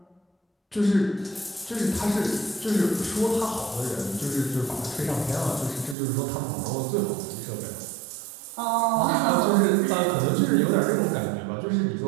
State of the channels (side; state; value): left; drops out; at 6.0 s